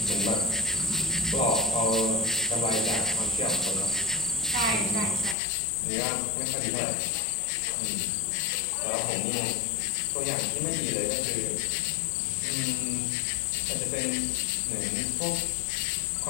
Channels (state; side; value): drops out; right; at 5.4 s